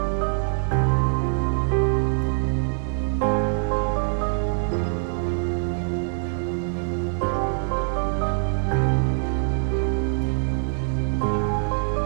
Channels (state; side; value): silent; left; digital silence